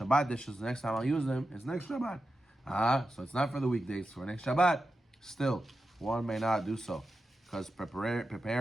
dishes, the next time I'll use them is next Shabbat. So it's not for the weekdays, for next Shabbat. Still, one may not do so, because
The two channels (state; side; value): normal; both; correlation 0.90